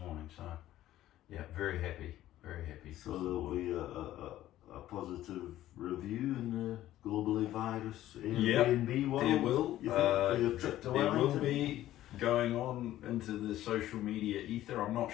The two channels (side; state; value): right; quieter; 13.8 dB